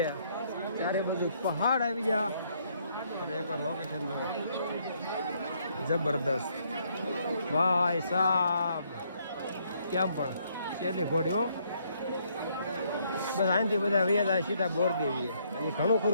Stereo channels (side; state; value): both; inverted; correlation -0.70